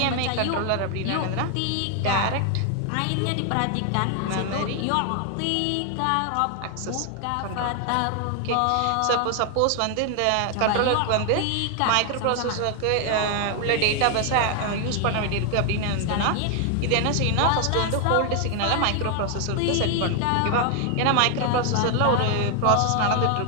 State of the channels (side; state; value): both; different; correlation 0.00